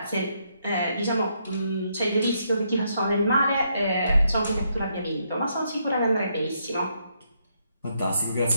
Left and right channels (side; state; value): both; inverted; correlation -0.76